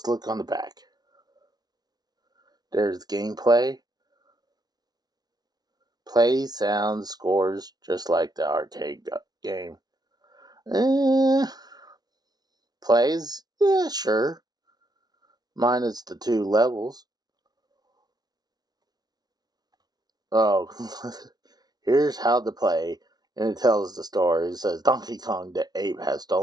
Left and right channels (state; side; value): late; left; 0.19 ms